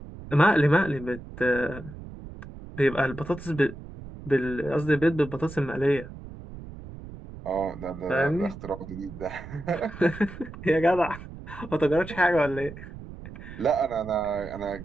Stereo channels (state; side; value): noise; right; rumble, 14 dB below the sound